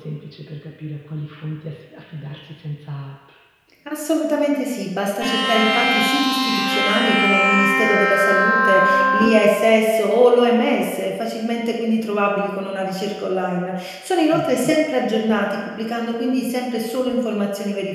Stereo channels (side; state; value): both; identical; correlation 1.00